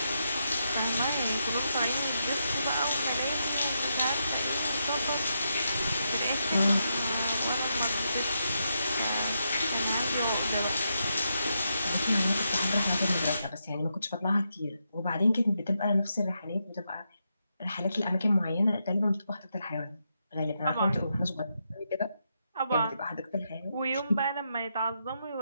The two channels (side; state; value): both; inverted; correlation -0.83